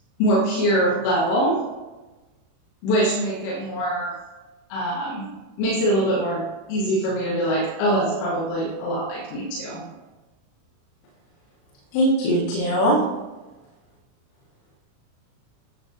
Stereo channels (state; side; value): late; right; 36 ms